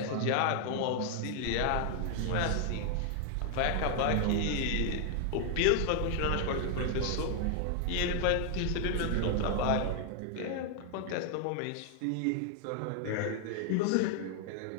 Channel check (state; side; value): different; both; correlation 0.00